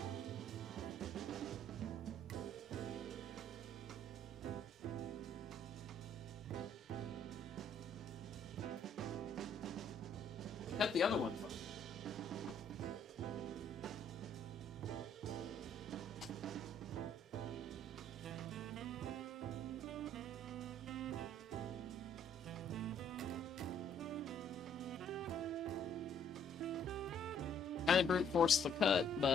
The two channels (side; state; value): both; normal; correlation 0.63